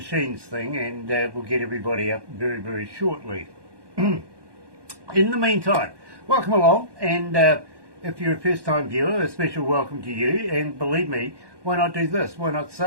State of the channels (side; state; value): left; late; 1.2 ms